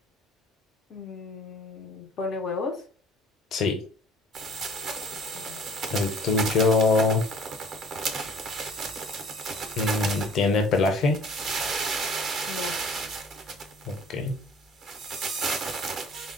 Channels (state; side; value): normal; both; correlation 0.51